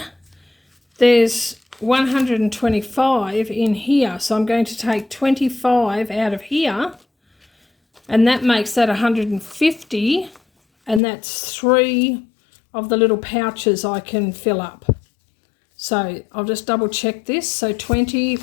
there's 125 in here. So I'm going to take 25 out of here, and that makes that 150, and that's 3 of the little pouches I can fill up. So I'll just double check this. So 20,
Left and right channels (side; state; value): right; drops out; at 11.0 s